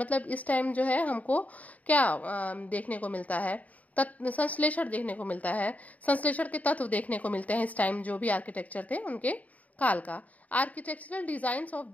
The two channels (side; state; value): right; late; 0.072 ms